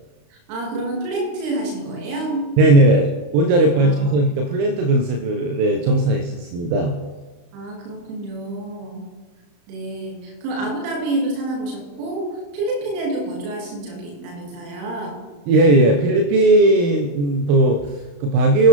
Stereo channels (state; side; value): late; left; 35 ms